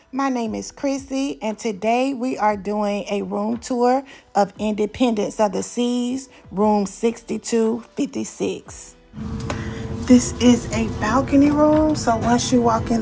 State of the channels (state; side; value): identical; both; correlation 1.00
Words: My name is Chrissy, and today we are doing a room tour of Independence of the Seas, room 6256. This is a balcony room, so once you walk in